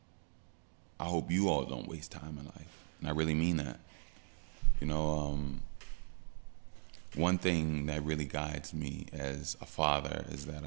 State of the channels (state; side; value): silent; left; 52 dB below the other